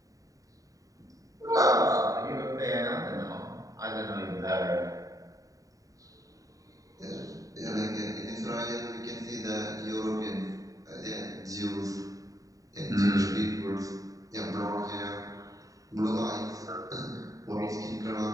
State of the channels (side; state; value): left; late; 0.16 ms